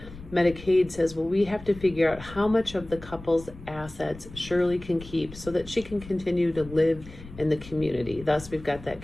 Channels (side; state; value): left; noise; rumble, 16 dB below the sound